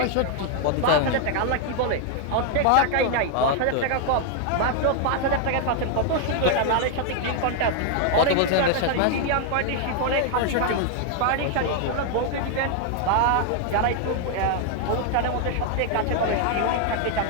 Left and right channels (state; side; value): different; both; correlation 0.00